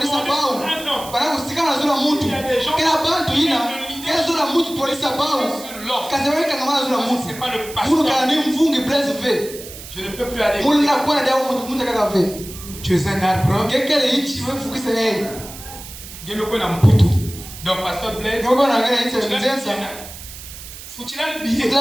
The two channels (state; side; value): noise; right; hiss, 14 dB below the sound